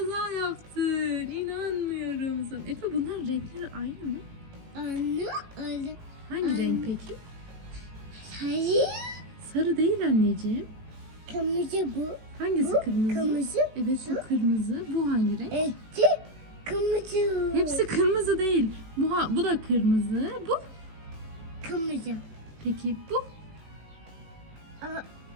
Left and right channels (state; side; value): late; left; 18 ms